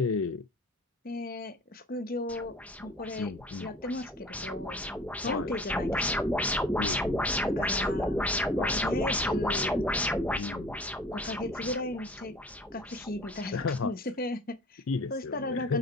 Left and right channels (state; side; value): normal; both; correlation 0.45